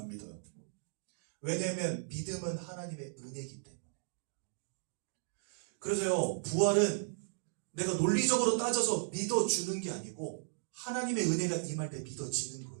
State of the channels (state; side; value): silent; left; digital silence